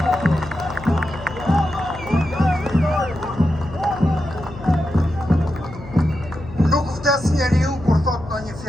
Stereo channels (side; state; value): left; noise; hum, 15 dB below the sound